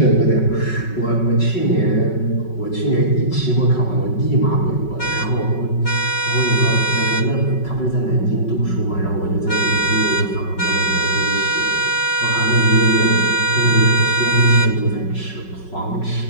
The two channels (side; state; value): right; late; 5.4 ms